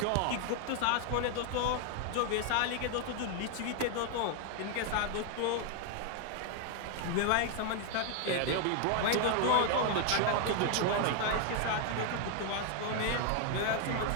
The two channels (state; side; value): different; both; correlation 0.00